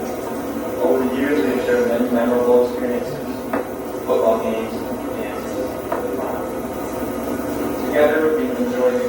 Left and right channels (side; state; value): both; identical; correlation 1.00